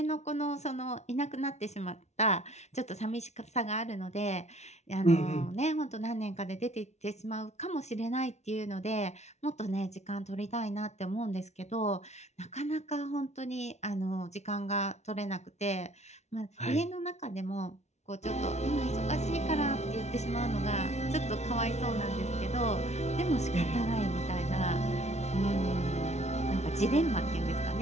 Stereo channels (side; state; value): right; late; 0.32 ms